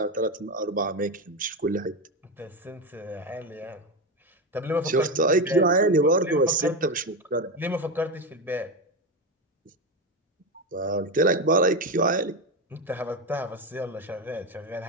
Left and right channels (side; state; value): both; normal; correlation 0.14